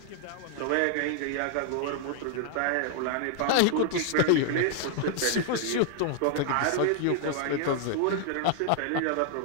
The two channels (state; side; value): different; both; correlation 0.00